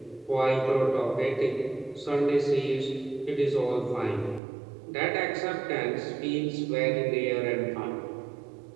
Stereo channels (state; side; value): drops out; left; at 4.4 s